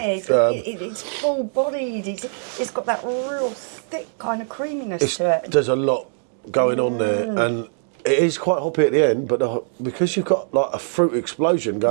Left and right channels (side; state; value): left; silent; digital silence